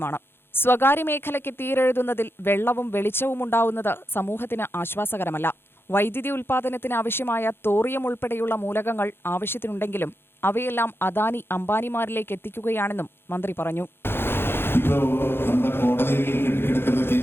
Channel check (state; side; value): late; right; 0.11 ms